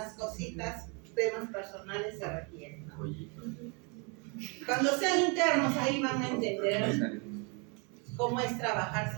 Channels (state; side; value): quieter; left; 33.1 dB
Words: cositas, temas personales se requieren, ¿no? Cuando sean internos, ahí van a entender cómo es trabajar